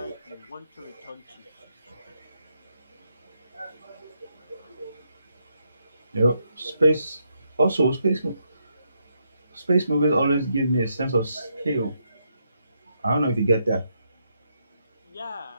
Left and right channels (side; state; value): both; inverted; correlation -0.79